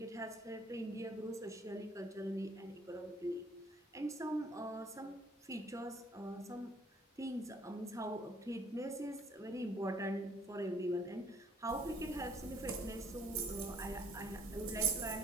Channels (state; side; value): normal; both; correlation 0.61